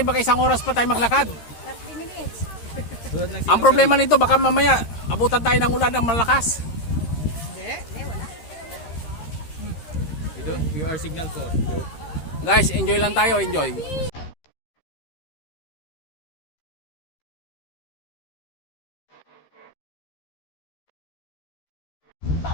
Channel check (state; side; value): late; right; 13 ms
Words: baka isang oras pa tayo maglakad. 30 minutes. Ang problema nito, baka mamaya abutan tayo ng ulan ng malakas. Hindi, wala. We are signal for. Guys, enjoy lang tayo, enjoy.